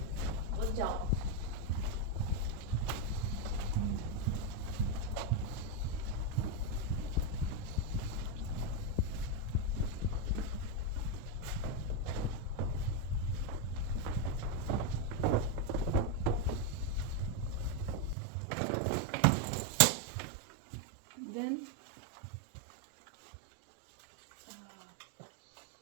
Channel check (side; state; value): left; drops out; at 18.2 s